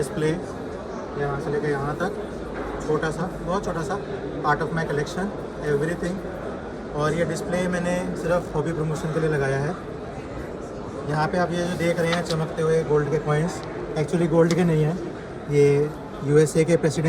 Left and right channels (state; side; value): identical; both; correlation 1.00